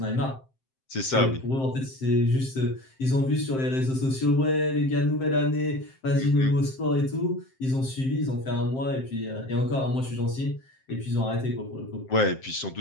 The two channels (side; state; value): right; late; 7.6 ms